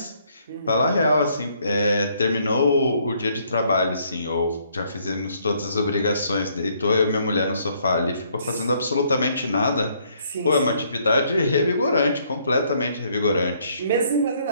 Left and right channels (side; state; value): both; inverted; correlation -0.67